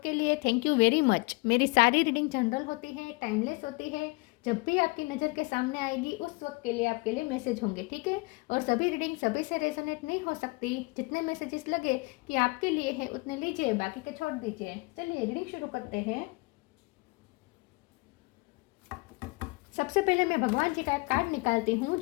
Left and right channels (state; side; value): quieter; right; 26.4 dB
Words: के लिए थैंक यू वेरी मच। मेरी सारी रीडिंग जनरल होती है, टाइमलेस होती है। जब भी आपकी नज़र के सामने आएगी उस वक्त के लिए आपके लिए मैसेज होंगे, ठीक है। और सभी रीडिंग सभी से रेजोनेट नहीं हो सकती। जितने मैसेजेस लगे कि आपके लिए है उतने लीजिए, बाकी के छोड़ दीजिए। चलिए रीडिंग शुरू करते हैं। सबसे पहले मैं भगवान जी का एक कार्ड निकालती हूँ